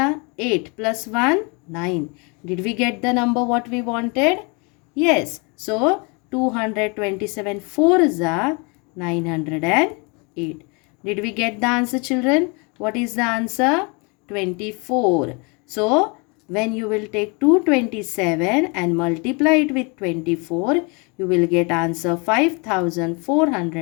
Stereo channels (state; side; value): quieter; right; 31.3 dB